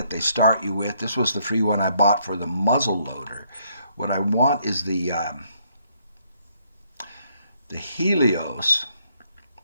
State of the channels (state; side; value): inverted; both; correlation -0.70